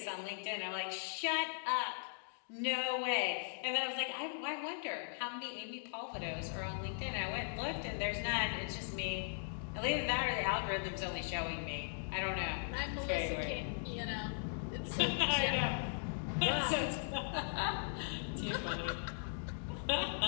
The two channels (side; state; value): right; silent; digital silence